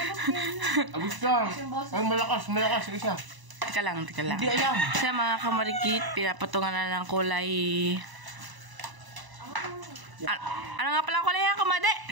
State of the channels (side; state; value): left; late; 1.0 ms